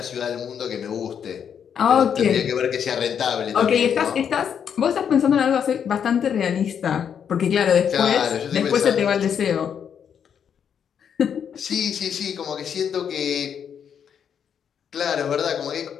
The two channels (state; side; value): quieter; right; 8.0 dB